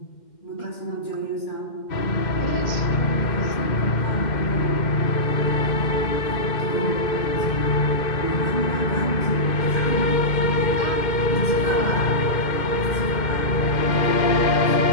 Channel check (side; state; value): right; late; 2.1 ms